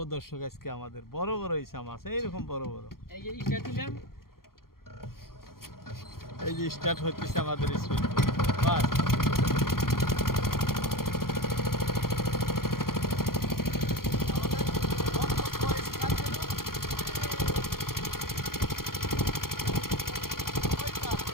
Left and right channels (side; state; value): right; late; 0.92 ms